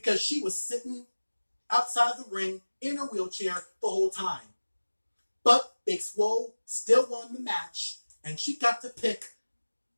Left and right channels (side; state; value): both; inverted; correlation -1.00